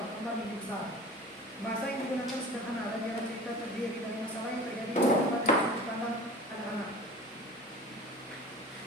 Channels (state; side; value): normal; both; correlation 0.39